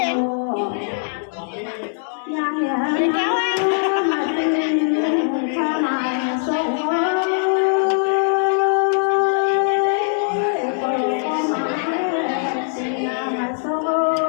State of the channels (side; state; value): right; silent; digital silence